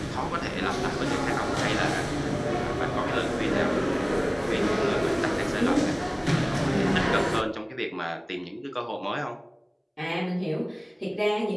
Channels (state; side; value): identical; both; correlation 1.00